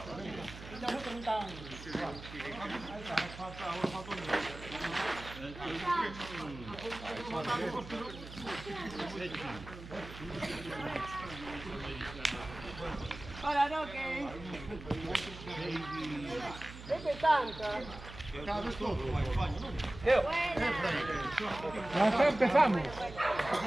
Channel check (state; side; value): noise; right; hum, 13 dB below the sound